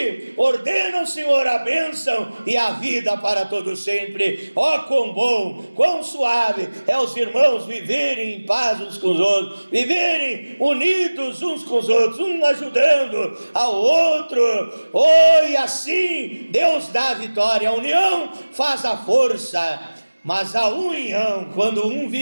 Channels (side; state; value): both; inverted; correlation -1.00